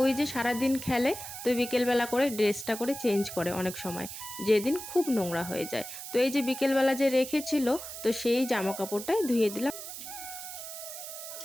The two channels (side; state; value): right; noise; hiss, 10 dB below the sound